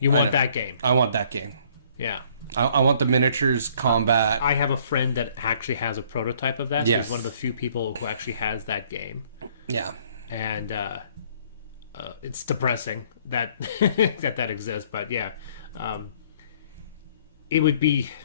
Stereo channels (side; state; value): both; inverted; correlation -0.60